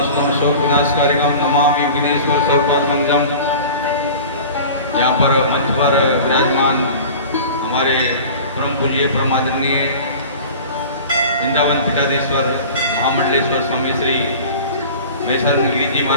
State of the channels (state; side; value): inverted; both; correlation -0.39